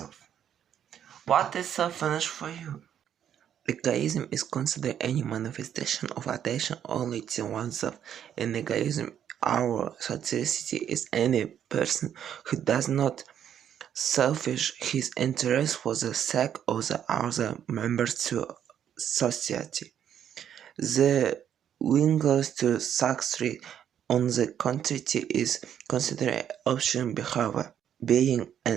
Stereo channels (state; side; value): quieter; left; 9.5 dB